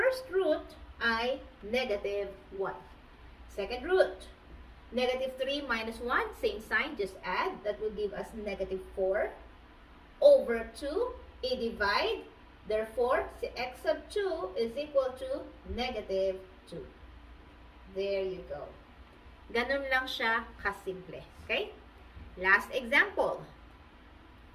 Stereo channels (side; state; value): both; identical; correlation 1.00